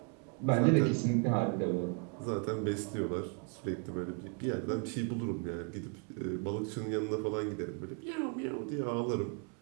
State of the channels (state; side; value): quieter; left; 36.7 dB